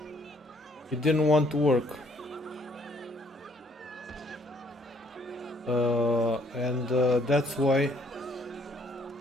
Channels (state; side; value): normal; both; correlation 0.65